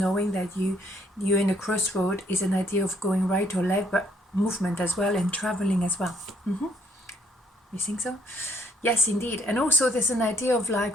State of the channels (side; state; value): both; normal; correlation 0.66